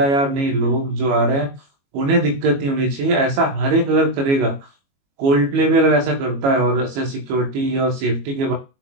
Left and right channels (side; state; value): left; late; 22 ms